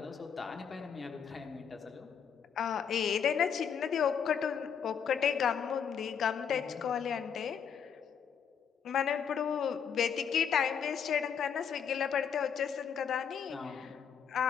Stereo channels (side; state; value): right; quieter; 7.4 dB